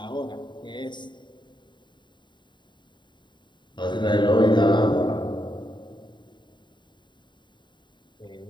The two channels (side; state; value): right; late; 0.22 ms